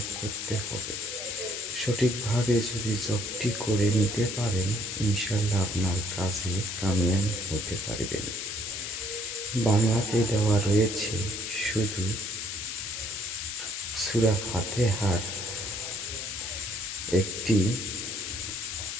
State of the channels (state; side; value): noise; left; hiss, 5 dB below the sound